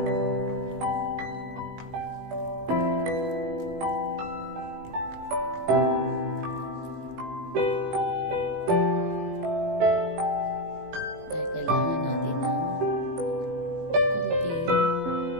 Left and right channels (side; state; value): left; late; 18 ms